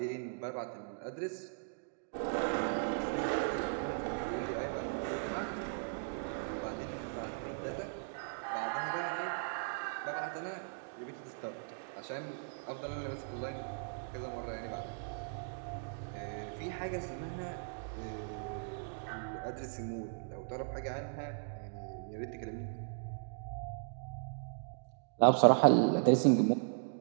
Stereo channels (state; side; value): silent; left; digital silence